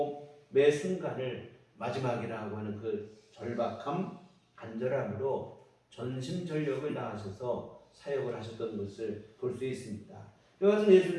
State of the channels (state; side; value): identical; both; correlation 1.00